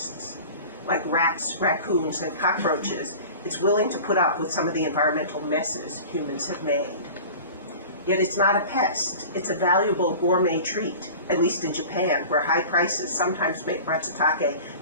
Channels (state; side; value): inverted; both; correlation -0.38